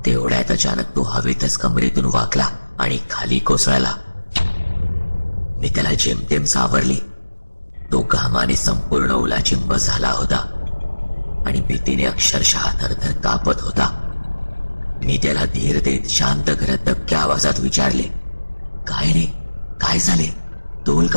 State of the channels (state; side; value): inverted; both; correlation -1.00